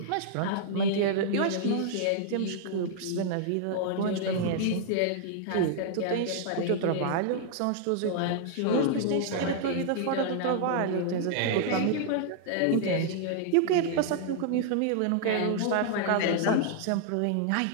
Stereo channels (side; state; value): both; different; correlation -0.01